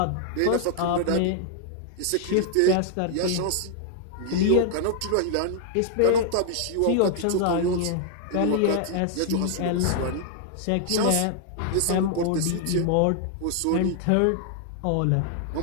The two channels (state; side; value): different; both; correlation 0.00